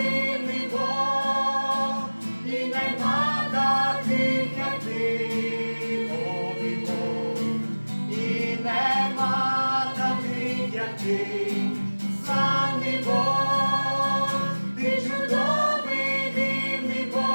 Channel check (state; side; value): inverted; both; correlation -1.00